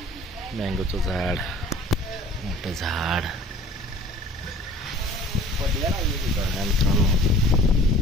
मँगोचं झाड, मोठं झाड, मित्रांनो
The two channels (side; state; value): both; normal; correlation 0.48